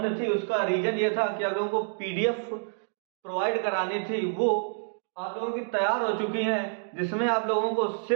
थी उसका रीजन ये था कि आप लोगों को पीडीएफ प्रोवाइड करानी थी, वो आप लोगों की तैयार हो चुकी हैं, जिसमें आप लोगों को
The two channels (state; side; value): silent; left; digital silence